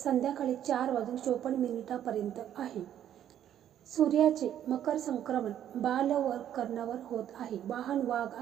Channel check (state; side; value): quieter; left; 10.6 dB